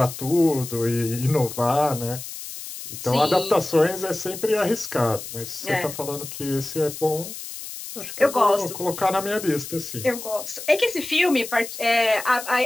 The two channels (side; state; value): left; noise; hiss, 10 dB below the sound